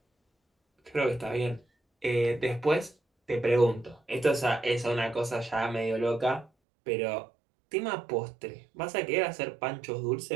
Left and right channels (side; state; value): left; drops out; at 6.5 s